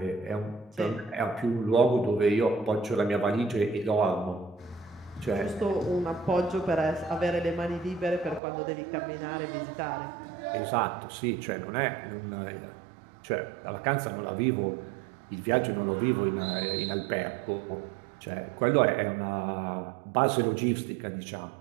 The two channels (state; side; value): drops out; left; at 8.4 s